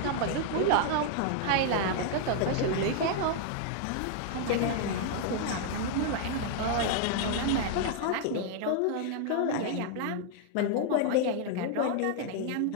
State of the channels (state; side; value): different; both; correlation 0.00